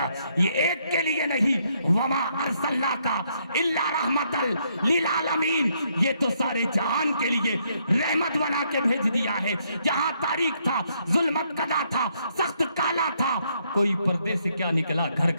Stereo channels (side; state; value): both; inverted; correlation -0.73